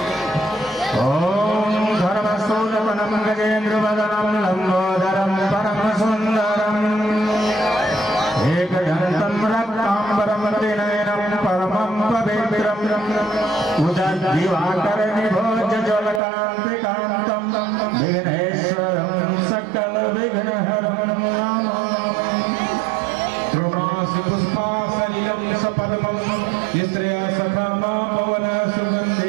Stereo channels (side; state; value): left; drops out; at 16.2 s